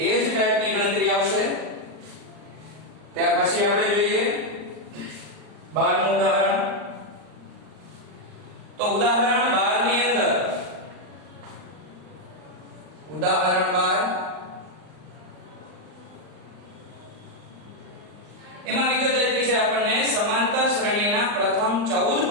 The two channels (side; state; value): left; late; 39 ms